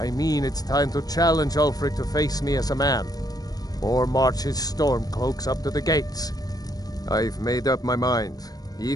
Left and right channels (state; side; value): late; right; 0.18 ms